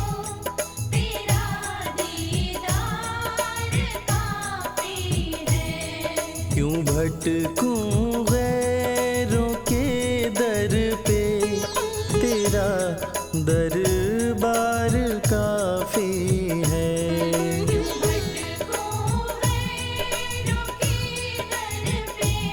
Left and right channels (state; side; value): identical; both; correlation 1.00